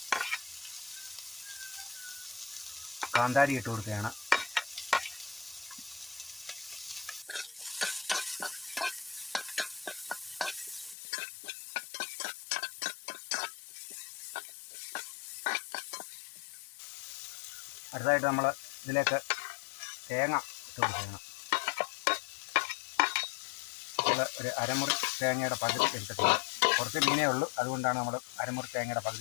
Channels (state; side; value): drops out; right; at 11.0 s